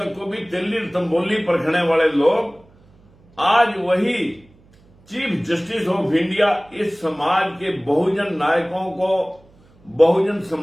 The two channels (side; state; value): right; noise; hum, 30 dB below the sound